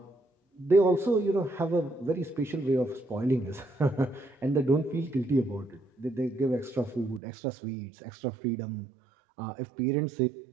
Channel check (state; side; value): drops out; left; at 7.2 s